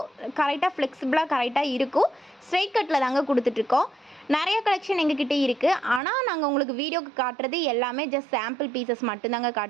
கரெக்டாக ஃப்ளெக்சிபிளாக கரெக்டாக இருக்கும். ஸ்ட்ரைட் கட்டில் தாங்க கொடுத்துட்ருக்கோம். நிறைய கலெக்ஷன் எங்ககிட்ட இருக்குது. ஆனால் நாங்கள் உங்களுக்கு வீடியோக்கு காட்டுறது எல்லாமே ஜஸ்ட் சாம்பிள் பீசஸ் மட்டும்தாங்க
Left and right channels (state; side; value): drops out; left; at 6.0 s